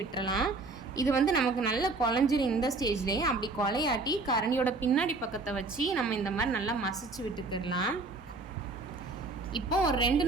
விட்டுறலாம். இது நமக்கு நல்லா குழஞ்சிரும். இந்த ஸ்டேஜ்லேயே அப்படி கொலையாட்டி கரண்டியோட பின்னாடி பக்கத்தை வச்சு நம்ம இந்த மாதிரி நல்லா மசிச்சு விட்டுக்கிடலாம். இப்போ ஒரு 2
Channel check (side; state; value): left; quieter; 3.5 dB